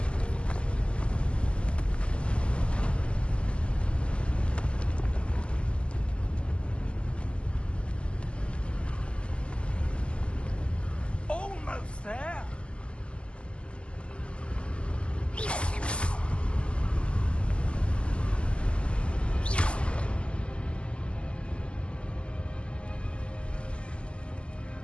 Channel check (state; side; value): late; right; 0.053 ms